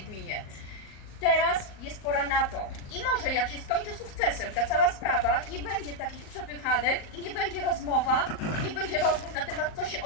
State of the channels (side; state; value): right; late; 38 ms